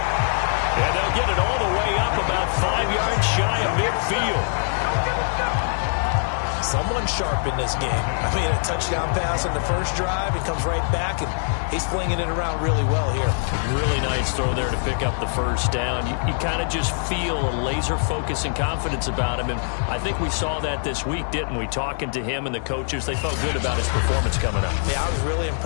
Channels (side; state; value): right; silent; digital silence